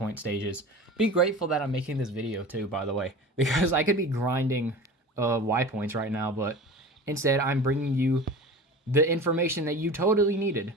stages. Be grateful that I'm making this video, too, by the way, because I could be grinding Y points right now, but instead I'm bringing you the information that you totally needed,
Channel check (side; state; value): both; normal; correlation 0.36